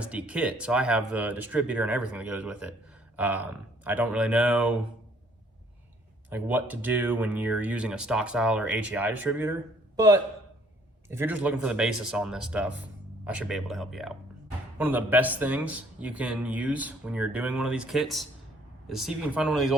kit, so I have the distributor and everything that goes with it. I don't really know like what to do when you're using a stock style or HEI distributor, but if you're just looking for the basis on this stuff, I should be able to help you out. One of the best things you can use when you're doing one of these kits is see if you can find one of these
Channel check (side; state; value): both; normal; correlation 0.61